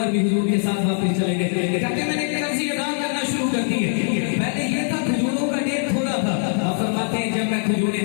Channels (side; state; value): right; silent; digital silence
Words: بھی حضور کے ساتھ واپس چلے گئے، کہتے ہیں میں نے قرضے ادا کرنا شروع کر دیے، پہلے یہ تھا کھجوروں کا ڈھیر تھوڑا تھا، آپ فرماتے ہیں جب میں کھجوریں